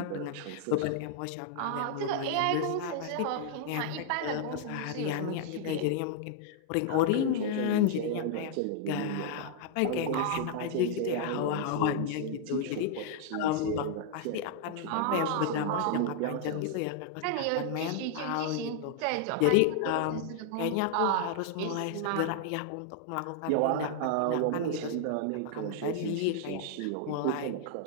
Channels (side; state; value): both; different; correlation 0.00